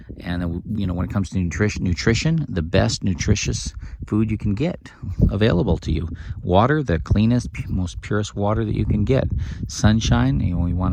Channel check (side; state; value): both; identical; correlation 1.00